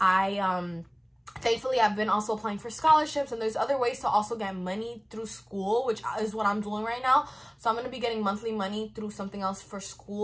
thankfully I've been also applying for scholarships, and there's other ways to also get money through school, which is what I'm doing right now. So I'm going to be getting monthly money through something else for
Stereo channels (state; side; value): identical; both; correlation 1.00